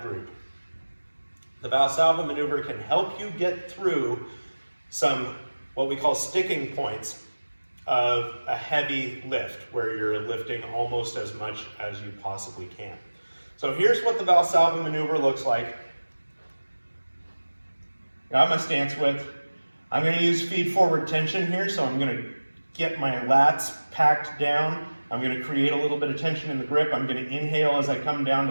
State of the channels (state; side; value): inverted; both; correlation -1.00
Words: group, the Valsalva maneuver can help you get through some what we call sticking points of a heavy lift, where you're lifting almost as much as you possibly can. So here's what the Valsalva maneuver looks like. Got my stance width. I'm going to use feed forward tension here, so I'm going to get my lats packed down. I'm going to create a little bit of tension in the grip. I'm going to inhale as I come down